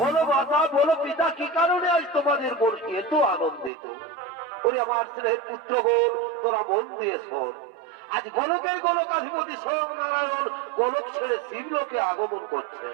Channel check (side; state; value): left; drops out; at 3.7 s